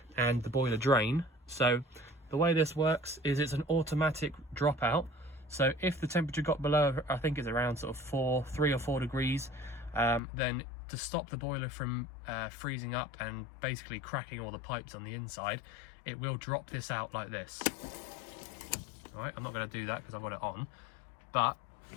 and the boiler drain. So the way this works is it's an automatic dropout. So if the temperature got below, I think it's around sort of 3 or 4 degrees, then to stop the boiler from freezing up and basically cracking all the pipes on the inside, it will drop this out like this. All right, I'm not going to do that because I've got it on, but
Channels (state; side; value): drops out; right; at 10.2 s